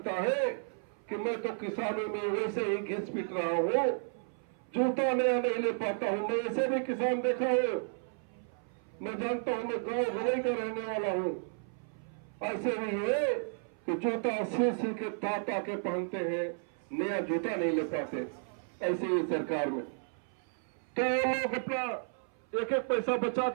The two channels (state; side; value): silent; left; 56 dB below the other